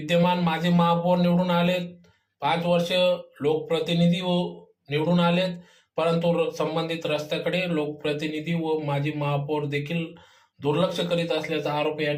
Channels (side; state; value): both; identical; correlation 1.00